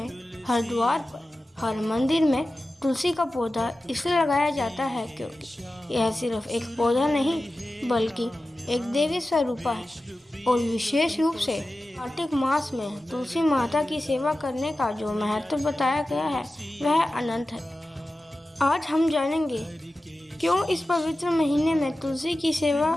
हर द्वार पर, हर मंदिर में तुलसी का पौधा इसलिए लगाया जाता है क्योंकि यह सिर्फ एक पौधा नहीं बल्कि एक देवी स्वरूपा है और विशेष रूप से कार्तिक मास में तुलसी माता की सेवा करने का जो महत्व बताया गया है वह अनंत है। आज हम जानेंगे क्यों इस पवित्र महीने में तुलसी की सेवा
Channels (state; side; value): normal; both; correlation 0.94